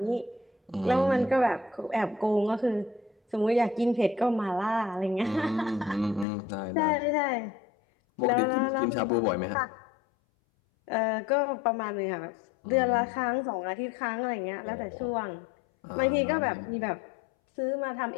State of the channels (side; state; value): right; drops out; at 6.2 s